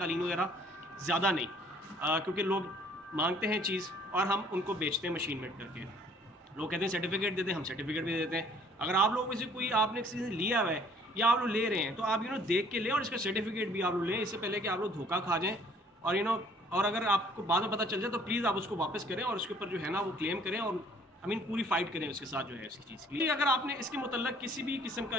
वगैरह, ज़्यादा नहीं, क्योंकि लोग मांगते हैं चीज़ और हम उनको बेचते हैं मशीन मेड करके। लोग कहते हैं सर्टिफिकेट देते हैं, हम सर्टिफिकेट भी देते हैं। अगर आप लोग में से कोई आपने किसी से लिया हुआ है या आप लोग ले रहे हैं, तो आप देख के लें, और इसका सर्टिफिकेट भी आप लोग लें, इससे पहले कि आप लोग धोखा खा जाएँ। और और अगर आपको बाद में पता चल जाए तो प्लीज़ आप उसको वापस करें और उसके ऊपर जो है ना वो क्लेम करें, और आई मीन पूरी फाइट करें उसके साथ जो है उसकी चीज़ की। अगर आपने इसके मतलब किसी भी किस्म का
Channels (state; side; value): normal; both; correlation 0.58